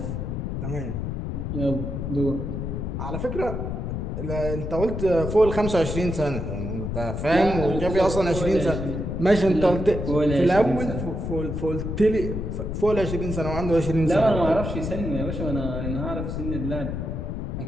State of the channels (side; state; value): left; noise; rumble, 4 dB below the sound